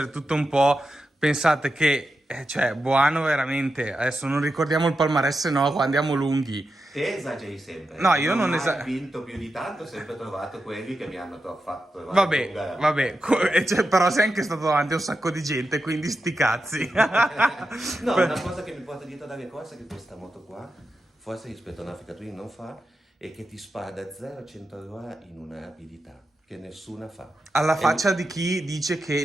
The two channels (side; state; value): both; normal; correlation 0.89